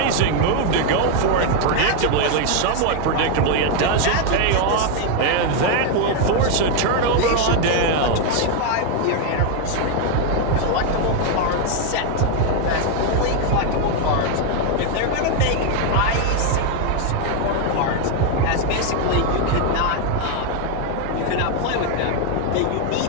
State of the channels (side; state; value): both; different; correlation 0.01